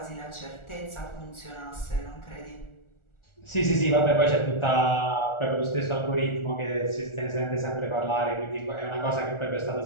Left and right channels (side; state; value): right; late; 1.4 ms